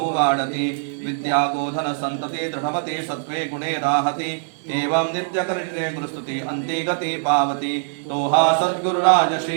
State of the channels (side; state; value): left; silent; digital silence